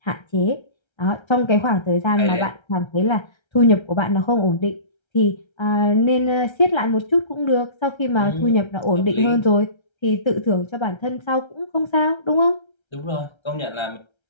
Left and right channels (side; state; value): right; late; 1.3 ms